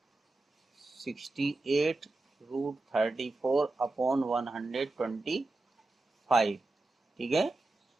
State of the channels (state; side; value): quieter; left; 3.1 dB